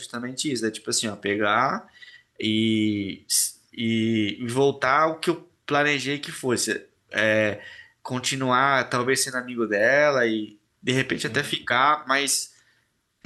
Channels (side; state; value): both; identical; correlation 1.00